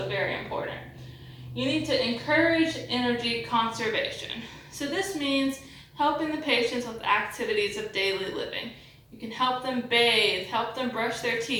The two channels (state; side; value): identical; both; correlation 1.00